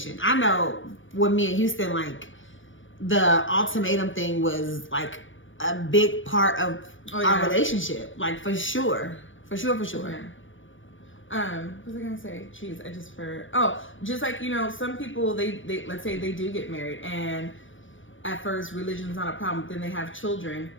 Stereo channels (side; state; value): right; late; 0.56 ms